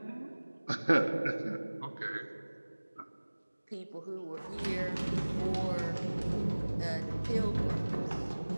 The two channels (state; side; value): inverted; both; correlation -1.00